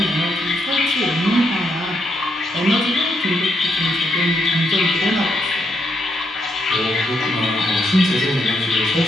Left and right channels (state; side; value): normal; both; correlation 0.77